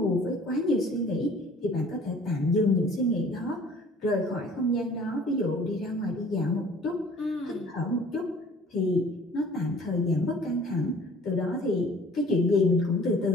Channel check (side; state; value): both; normal; correlation 0.51